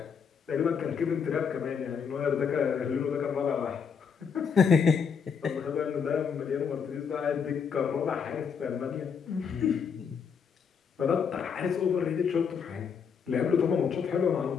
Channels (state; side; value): quieter; right; 6.5 dB